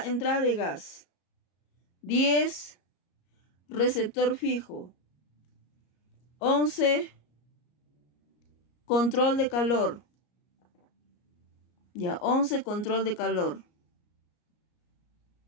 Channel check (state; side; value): late; right; 34 ms